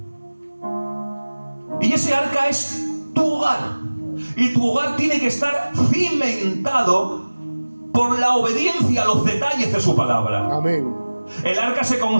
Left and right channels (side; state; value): both; inverted; correlation -1.00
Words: Y ese arca es tu hogar. Y tu hogar tiene que estar cimentado por la obediencia a los detalles de su palabra. Amén. El arca se